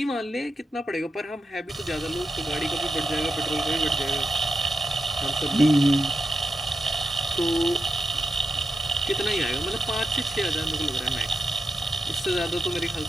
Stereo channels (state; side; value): normal; both; correlation 0.87